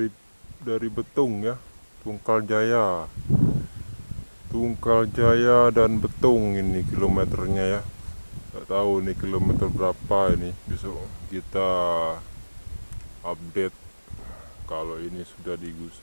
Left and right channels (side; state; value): both; inverted; correlation -1.00